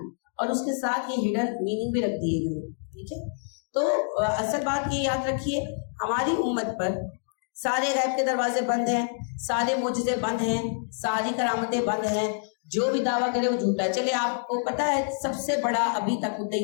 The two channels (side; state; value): right; silent; digital silence